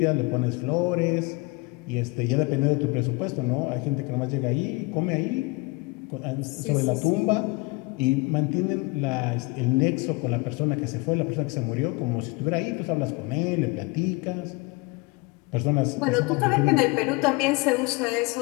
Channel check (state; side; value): quieter; right; 25.5 dB